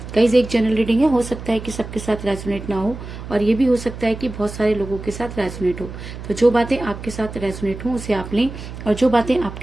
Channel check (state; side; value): noise; right; hum, 11 dB below the sound